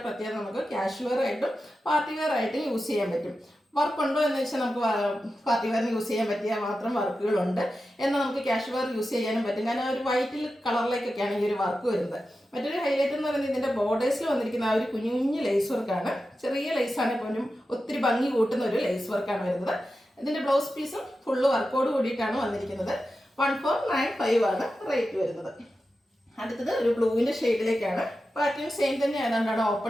പ്രത്യേകത നമുക്ക് കാഷ്വൽ ആയിട്ടും പാർട്ടി വെയർ ആയിട്ടും യൂസ് ചെയ്യാൻ പറ്റും. വർക്ക് ഉണ്ടോ എന്ന് വെച്ചാൽ നമുക്ക് പാർട്ടി വെയറിന് യൂസ് ചെയ്യാൻ പറ്റിയ മാത്രം വർക്കുകളുണ്ട്. എന്നാൽ നമുക്ക് ക്യാഷ് വെയർ യൂസ് ചെയ്യാനും പറ്റും. കാരണം ഒരു വൈറ്റിൽ കളറിലേക്കൊക്കെയാണ് ഈ ഒരു വർക്ക് വരുന്നത്. മറ്റൊരു ഹൈലൈറ്റ് എന്ന് പറയുന്നത് ഇതിന്റെ ബോർഡേഴ്സിൽ വന്നിരിക്കുന്ന ആ ഒരു കുഞ്ഞു കുഞ്ഞു ലേസ് വർക്കാണ്. ചെറിയ ലേസാണ് പോലും ഒത്തിരി ഭംഗി കൂട്ടുന്ന ഒരു ലേസ് വർക്കാണ് വരുന്നത്. ഇതിന്റെ ബ്ലൗസ് പീസും ഫുള്ള് വർക്കോട് കൂടിയിട്ടാണ് വന്നിരിക്കുന്നത്. 1495 ആണ് റേറ്റ് വരുന്നത്. അടുത്തത് ഒരു ബ്ലൂവിന്റെ ഷെയ്ഡിലേക്കാണ്. പാറ്റേൺ സെയിം തന്നെ ആയതുകൊണ്ടാണ്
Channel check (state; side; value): normal; both; correlation 0.91